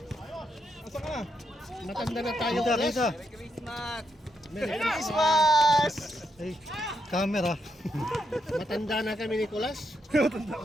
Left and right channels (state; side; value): normal; both; correlation 0.81